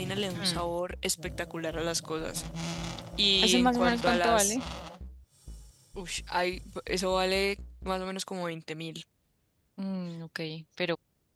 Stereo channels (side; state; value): both; identical; correlation 1.00